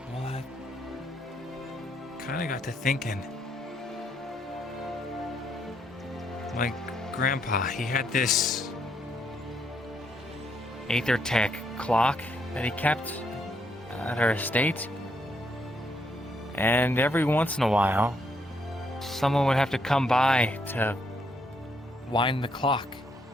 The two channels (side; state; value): both; normal; correlation 0.74